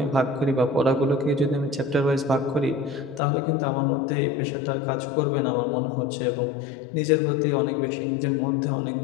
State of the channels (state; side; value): drops out; right; at 3.2 s